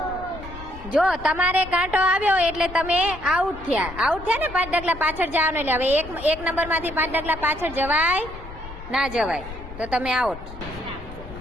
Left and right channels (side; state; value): left; noise; rumble, 13 dB below the sound